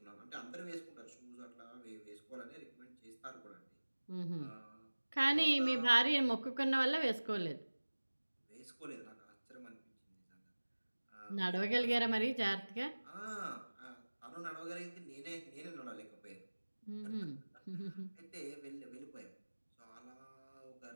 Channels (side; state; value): both; inverted; correlation -1.00